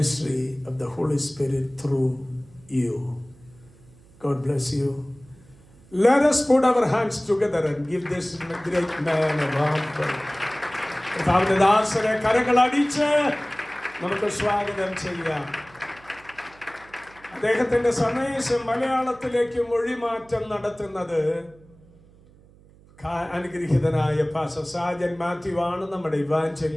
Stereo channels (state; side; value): noise; right; hum, 26 dB below the sound